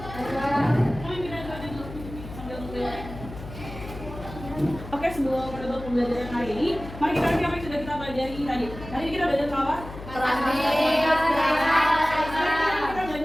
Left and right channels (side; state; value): left; noise; hum, 13 dB below the sound